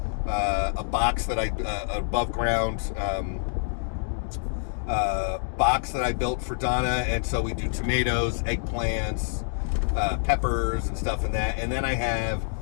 box that above ground box that I built for Donna, and so we do tomatoes, eggplants. Peppers and stuff in that, and then I have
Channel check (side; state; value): right; silent; digital silence